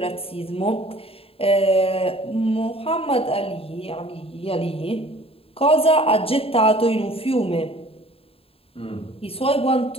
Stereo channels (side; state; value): right; late; 0.27 ms